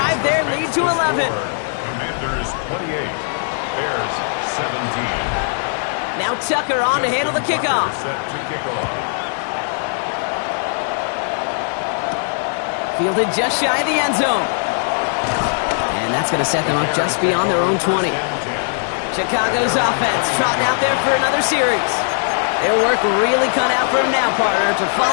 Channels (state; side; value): silent; right; digital silence